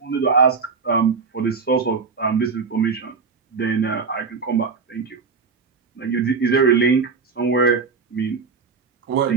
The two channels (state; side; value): quieter; left; 5.0 dB